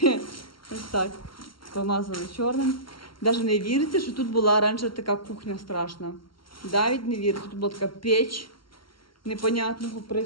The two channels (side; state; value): right; late; 0.73 ms